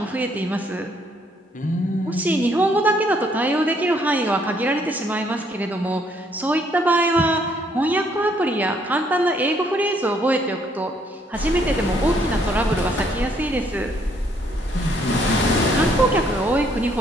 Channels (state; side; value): normal; both; correlation 0.68